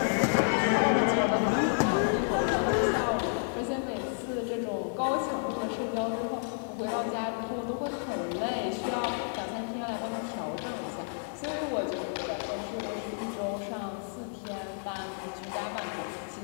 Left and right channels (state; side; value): silent; right; digital silence